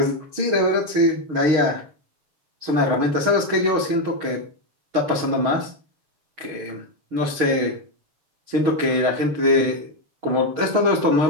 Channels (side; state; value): left; late; 6.4 ms